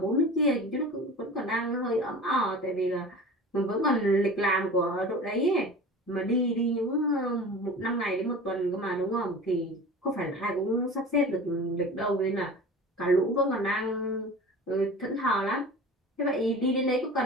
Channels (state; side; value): normal; both; correlation 0.37